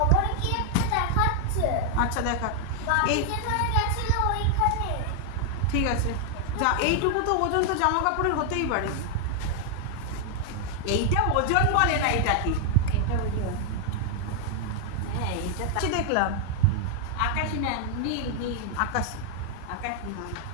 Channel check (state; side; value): different; both; correlation 0.00